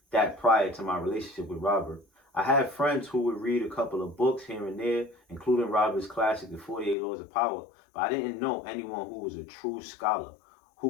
that prior to my relationship with Robert. I had friends who would read a couple of books here and there, including Robert's classic, The 48 Laws of Power, but I didn't know anyone who was a true scholar,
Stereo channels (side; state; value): right; drops out; at 7.0 s